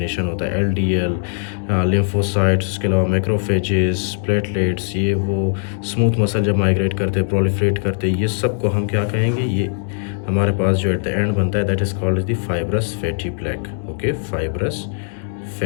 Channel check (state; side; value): silent; right; digital silence